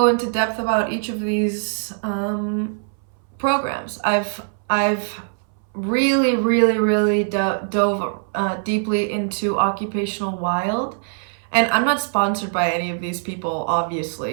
into depth about each of these programs. I've really, really, really dove deeply into Occupational Wild. And I'm not sponsored by any of these people,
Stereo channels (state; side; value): silent; left; 62 dB below the other